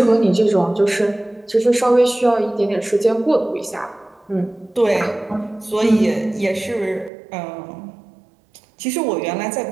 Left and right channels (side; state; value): left; drops out; at 7.1 s